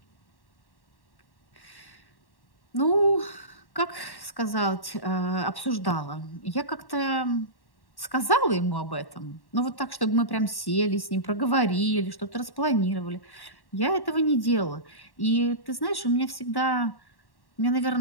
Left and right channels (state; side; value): late; right; 1.1 ms